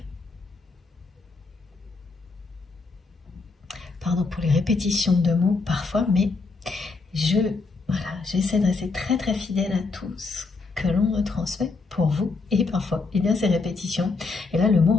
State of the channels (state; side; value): quieter; right; 4.1 dB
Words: Pardon pour les répétitions de mots parfois, mais j'essaie de rester très très fidèle à tout ce que l'on me transmet pour vous. Et parfois, eh bien, ces répétitions, et là le mot